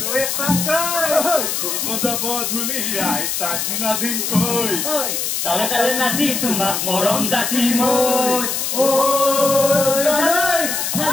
যাব ধুলি আই তাক নাদিম কই তালে তালে নাচি তোমাক মৰম যাচি মই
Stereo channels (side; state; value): left; noise; hiss, 1 dB below the sound